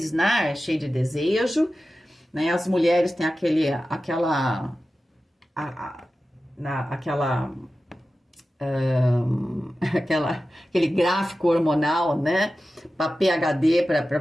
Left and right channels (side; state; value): both; normal; correlation 0.94